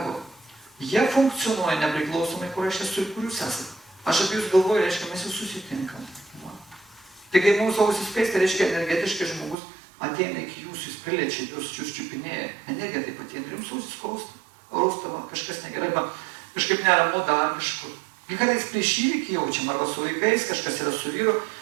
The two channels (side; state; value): left; drops out; at 9.6 s